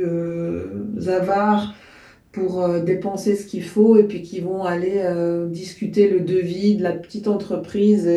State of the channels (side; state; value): both; identical; correlation 1.00